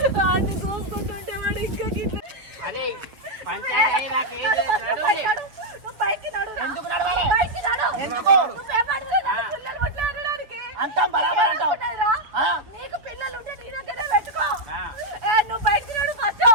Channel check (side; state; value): left; late; 6.7 ms